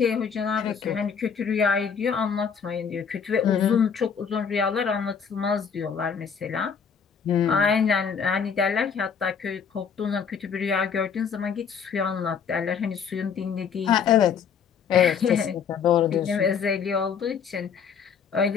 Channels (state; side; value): quieter; right; 6.7 dB